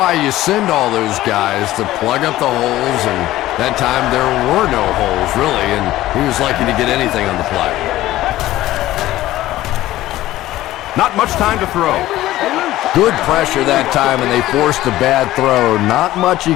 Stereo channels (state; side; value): quieter; right; 15.4 dB